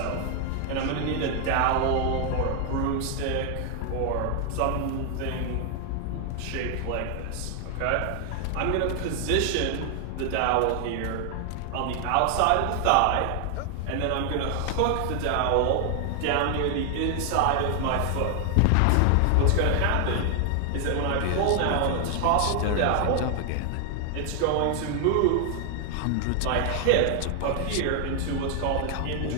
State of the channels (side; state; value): both; different; correlation 0.00